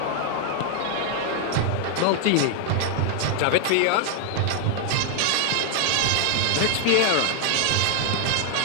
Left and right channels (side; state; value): both; different; correlation 0.00